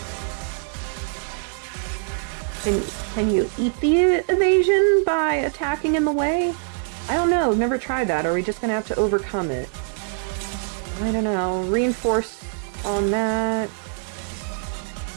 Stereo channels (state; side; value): silent; left; 63 dB below the other